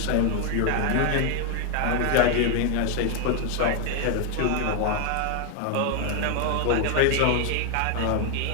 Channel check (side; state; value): both; different; correlation 0.01